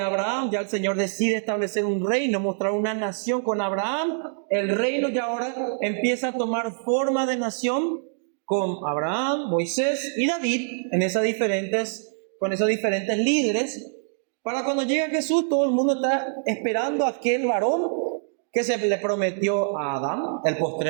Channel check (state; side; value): silent; left; digital silence